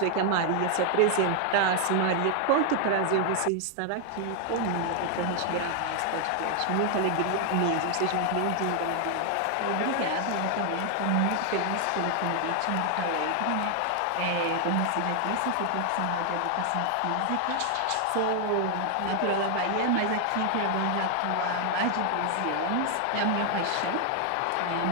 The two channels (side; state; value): both; different; correlation 0.00